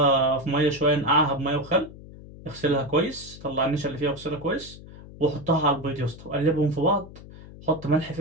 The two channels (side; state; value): left; noise; hum, 17 dB below the sound